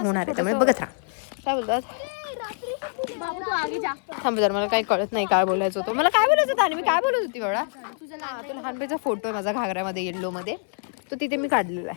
आहे, त्यामुळे बघत राहा. काय बोलतात थांब जर, मला काही कळत नाही काय बोलायचं होतं. मला काय बोलायचं होतं आणि मी काय बोलत होती एवढा. तो लहानपणीचा फोटो आहे माझा घागऱ्यामध्ये येल्लोमध्ये. तो तिथे मी काढलेला आहे.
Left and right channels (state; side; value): silent; right; 61 dB below the other